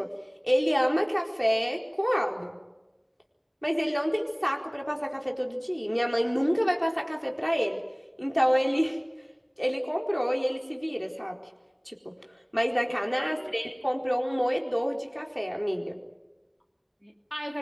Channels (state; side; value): identical; both; correlation 1.00